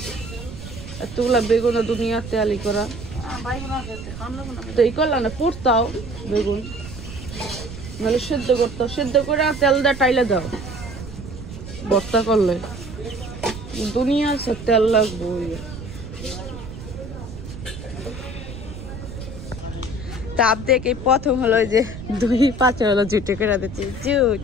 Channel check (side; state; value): right; noise; rumble, 11 dB below the sound